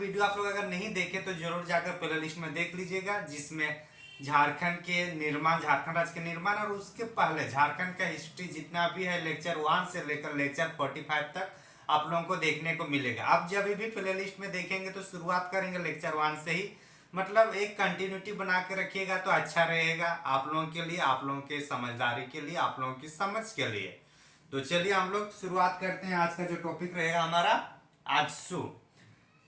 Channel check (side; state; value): both; identical; correlation 1.00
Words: आप लोग अगर नहीं देखे तो जरूर जाकर प्ले लिस्ट में देख लीजिएगा, जिसमें झारखंड के निर्माण, झारखंड राज्य के निर्माण और उसके पहले झारखंड का हिस्ट्री जितना भी है लेक्चर 1 से लेकर लेक्चर 45 तक आप लोगों को देखने को मिलेगा। आप जब भी प्ले लिस्ट में देखेंगे तो शुरुआत करेंगे लेक्चर 1 से ही, मतलब एक कंटिन्यूटी बना के रखिएगा तो अच्छा रहेगा आप लोगों के लिए, आप लोगों के समझदारी के लिए, आप लोगों की समझ के लिए। तो चलिए हम लोग शुरुआत करते हैं। आज का जो टॉपिक रहेगा हमारा आजसू।